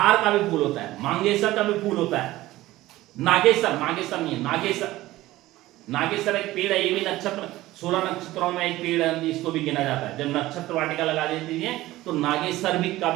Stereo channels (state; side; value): quieter; left; 16.9 dB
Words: का भी फूल होता है, मांगेसर का भी फूल होता है। नागेसर, नागेसर नहीं है, नागेसर। नागेसर एक पेड़ है, ये भी नक्षत्र 16 नक्षत्रों में एक पेड़ है, इसको भी गिना जाता है। जब नक्षत्र वाटिका लगा देती है तो नागेसर भी का